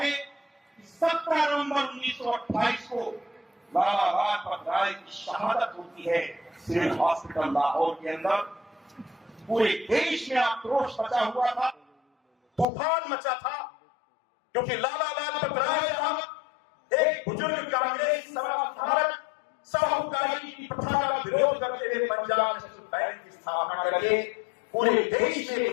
कि 17 नवंबर 1928 को लाला लाजपत राय की शहादत होती है सिविल हॉस्पिटल लाहौर के अंदर। पूरे देश में आक्रोश मचा हुआ था, तूफान मचा था, क्योंकि लाला लाजपत राय साहब एक बुजुर्ग कांग्रेस समाजधारक, साहूकारी की प्रथा का विरोध करते हुए पंजाब नेशनल बैंक की स्थापना करके पूरे देश में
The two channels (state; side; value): drops out; right; at 12.7 s